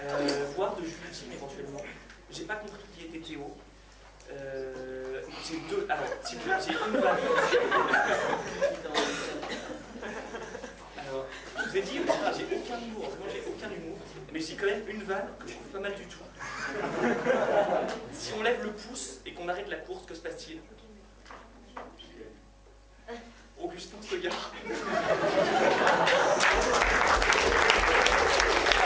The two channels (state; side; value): identical; both; correlation 1.00